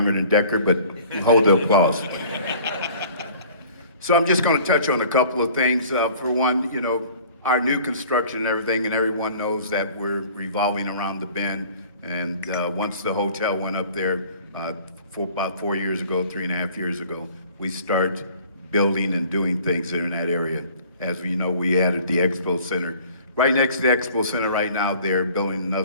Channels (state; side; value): inverted; both; correlation -0.50